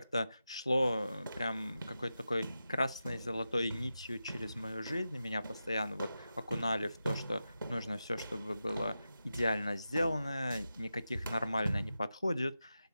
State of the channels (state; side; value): inverted; both; correlation -0.91